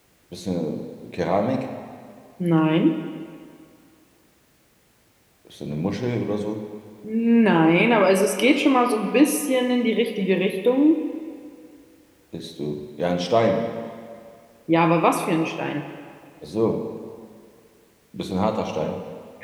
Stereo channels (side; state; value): both; identical; correlation 1.00